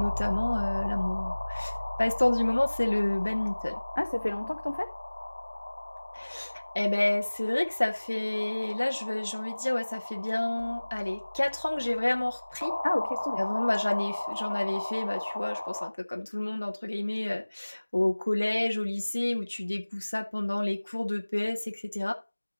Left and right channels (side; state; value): both; inverted; correlation -1.00